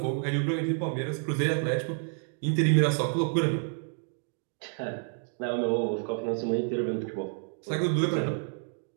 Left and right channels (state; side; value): silent; left; 56 dB below the other